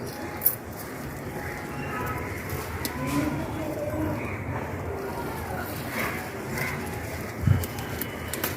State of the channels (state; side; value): identical; both; correlation 1.00